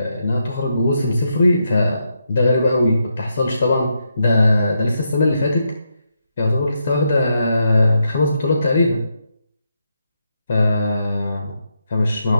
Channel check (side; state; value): both; inverted; correlation -0.82